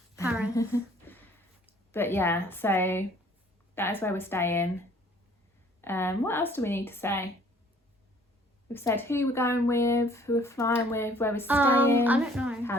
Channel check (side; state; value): both; normal; correlation 0.57